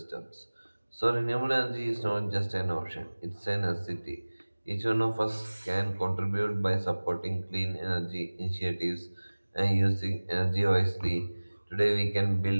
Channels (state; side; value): inverted; both; correlation -1.00